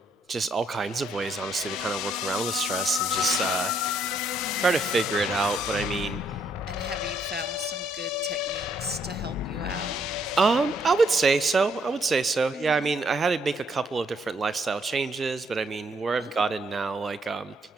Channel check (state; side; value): normal; both; correlation 0.71